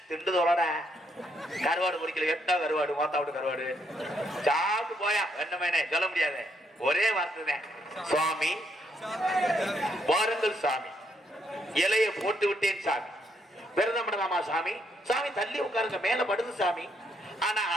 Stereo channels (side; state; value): both; normal; correlation 0.74